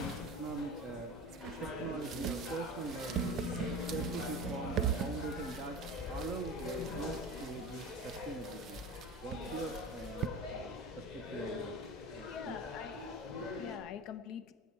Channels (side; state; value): both; normal; correlation 0.32